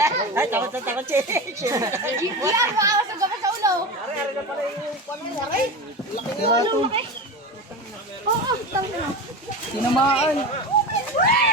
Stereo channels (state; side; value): normal; both; correlation 0.25